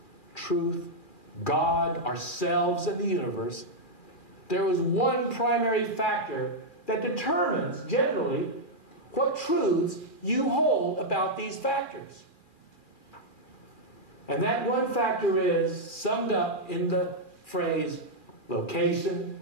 God, ourselves, and the universe, there is one primary factor that determines, generally, what truths you hold about these factors. And that one factor is summed up in the phrase, location,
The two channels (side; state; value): right; late; 2.4 ms